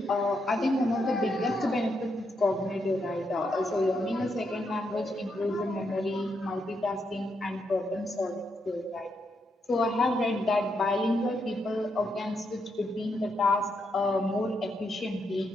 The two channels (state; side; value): normal; both; correlation 0.80